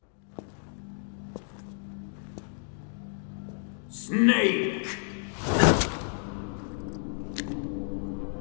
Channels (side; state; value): right; silent; 57 dB below the other